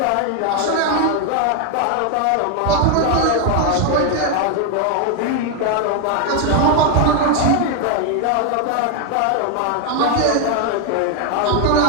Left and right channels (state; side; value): different; both; correlation 0.01